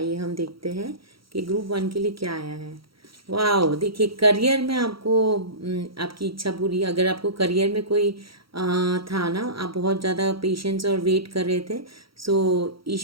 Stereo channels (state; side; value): late; left; 0.75 ms